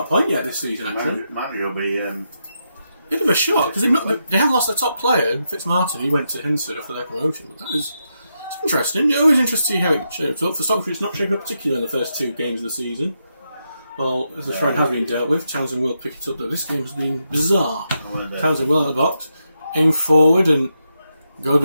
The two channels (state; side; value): inverted; both; correlation -0.84